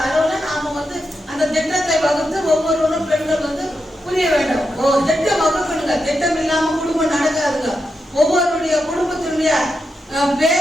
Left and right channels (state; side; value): normal; both; correlation 0.86